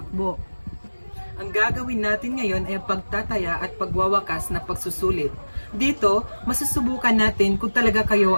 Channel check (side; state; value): both; inverted; correlation -1.00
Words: Ang gagawin natin ngayon ay ang pagtataya at pagwawakas na pagsusulit. Dito, masusubukan natin kung talaga kayo